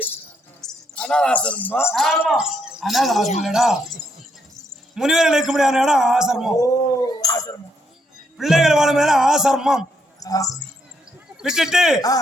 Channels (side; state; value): both; normal; correlation 0.75